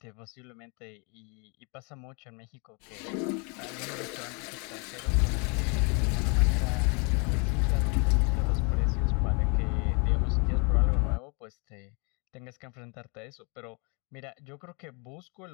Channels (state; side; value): quieter; right; 33.6 dB